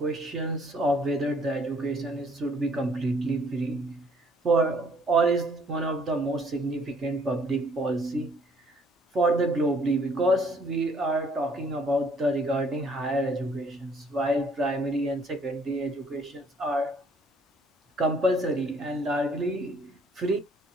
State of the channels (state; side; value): normal; both; correlation 0.62